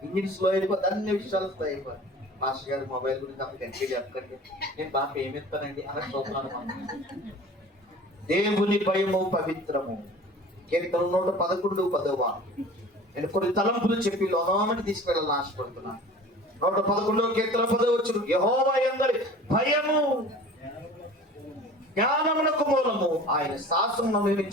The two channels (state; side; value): normal; both; correlation 0.42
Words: ఇంజిన్ స్లో అయిపోతుంది, అన్ని విషయాలు స్లో అయిపోతుంది. మాస్టర్ గారు మొబైల్ గురించి అప్పుడు గట్టిగా చెప్పకండి, నేను బాగా ఏమిస్తానండి అలా చూస్తున్నాను. దేవుని భయము పవిత్రము. కీర్తన 111:10. నేను కొన్ని తలంపులు చెప్పి లోనామని తీసుకెళ్ళాలని ఆశపడుతున్నాను. 111 కీర్తన 10 యెహోవా యందలి భయము జ్ఞానమునకు మూలము, ఆయన శాసనము